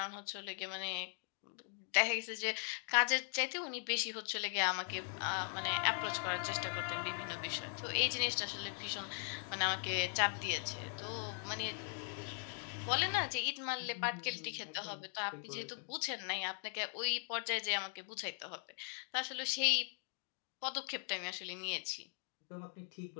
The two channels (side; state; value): right; silent; 51 dB below the other